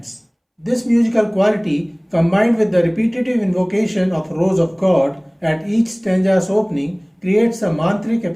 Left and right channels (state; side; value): identical; both; correlation 1.00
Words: This musical quality, combined with the repetitive invocation of Rose of God at each stanza's opening, creates a mantric